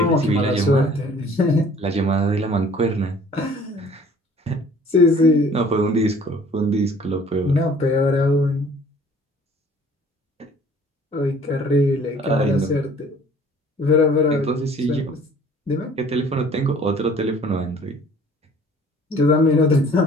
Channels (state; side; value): normal; both; correlation 0.53